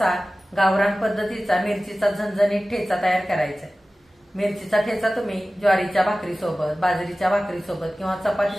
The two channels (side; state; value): both; normal; correlation 0.96